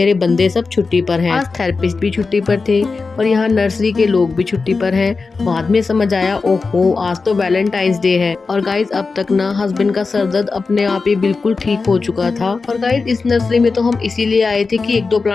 बंदे सब छुट्टी पर हैं। आज थेरेपिस्ट भी छुट्टी पर थे, और यहाँ नर्सरी के लोग भी छुट्टी पर हैं। बाद में समझ आया, ओहो, आज तो वैलेंटाइंस डे है। और गाइस, अब तक ना हस्बैंड का सर दर्द अपने आप ही बिल्कुल ठीक हो चुका था। और गाइस, इस नर्सरी में तो हम इसीलिए आए थे कि 1-2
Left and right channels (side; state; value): right; quieter; 4.3 dB